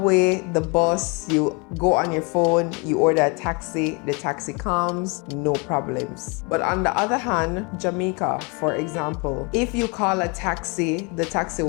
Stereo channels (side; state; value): right; quieter; 31.3 dB